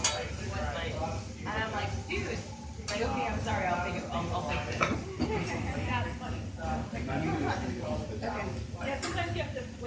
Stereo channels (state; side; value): identical; both; correlation 1.00